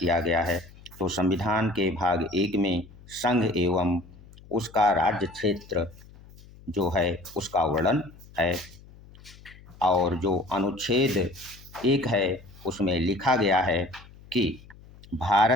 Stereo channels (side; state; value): left; noise; hum, 22 dB below the sound